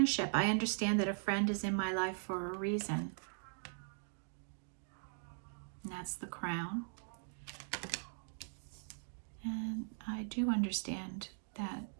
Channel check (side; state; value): left; silent; digital silence